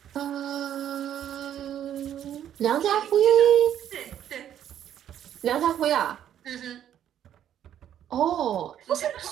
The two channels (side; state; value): left; quieter; 10.4 dB